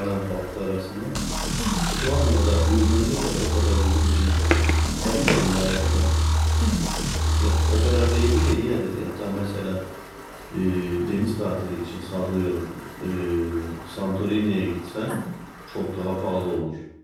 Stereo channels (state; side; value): identical; both; correlation 1.00